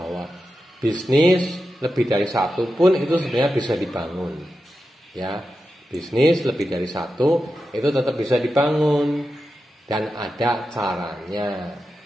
bisnis lebih dari satu pun itu sebenarnya bisa dibangun. Ya, bisnis lebih dari satu itu tetap bisa dibangun dan ada caranya.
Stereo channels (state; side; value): normal; both; correlation 0.90